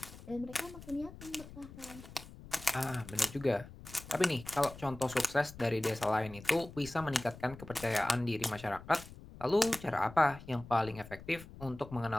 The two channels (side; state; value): left; noise; rumble, 16 dB below the sound